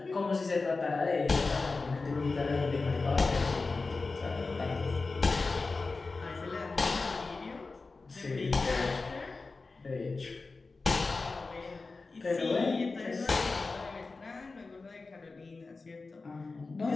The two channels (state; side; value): quieter; right; 3.9 dB